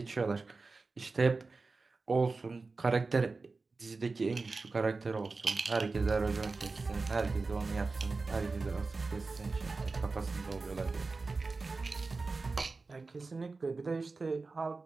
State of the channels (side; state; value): left; quieter; 3.9 dB